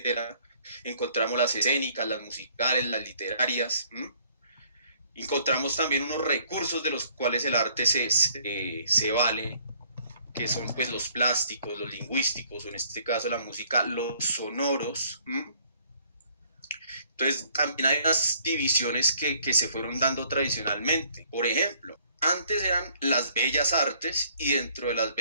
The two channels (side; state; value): both; inverted; correlation -0.62